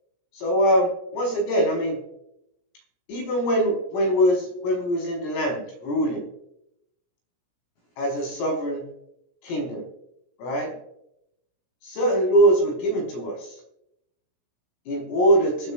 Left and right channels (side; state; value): right; late; 17 ms